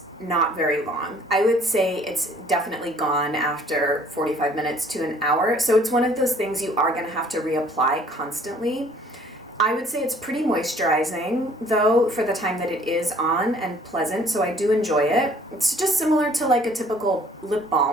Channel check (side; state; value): both; normal; correlation 0.57